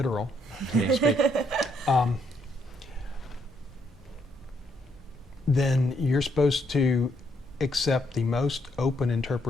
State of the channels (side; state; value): both; normal; correlation 0.73